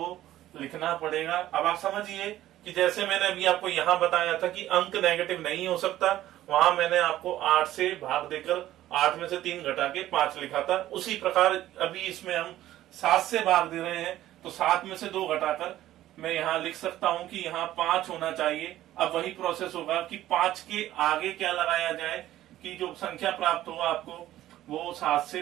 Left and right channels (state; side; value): quieter; left; 13.9 dB